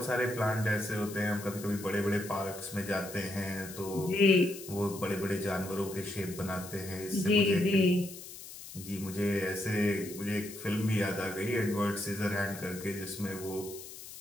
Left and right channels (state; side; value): noise; left; hiss, 13 dB below the sound